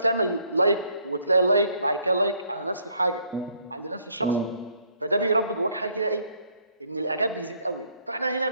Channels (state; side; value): inverted; both; correlation -0.66